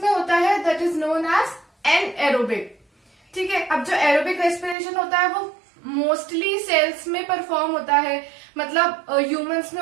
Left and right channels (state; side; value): drops out; left; at 4.8 s